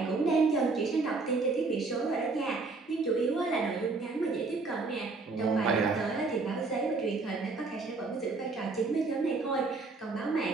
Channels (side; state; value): left; quieter; 3.9 dB